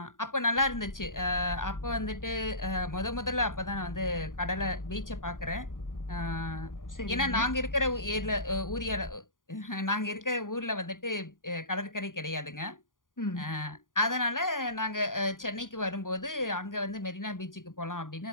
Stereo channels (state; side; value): late; right; 0.89 ms